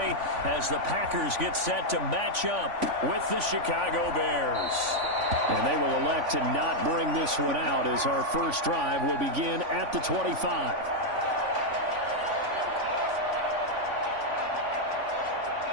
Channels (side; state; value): left; late; 3.5 ms